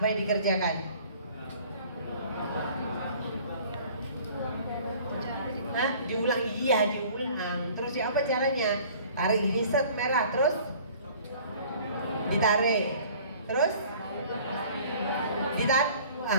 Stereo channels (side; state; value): both; inverted; correlation -0.50